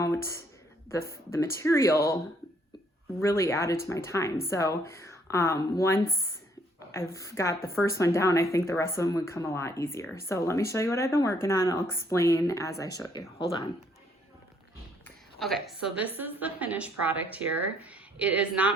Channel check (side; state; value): both; normal; correlation 0.66